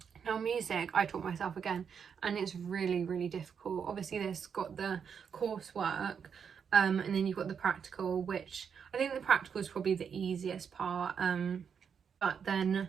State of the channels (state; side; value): quieter; left; 7.0 dB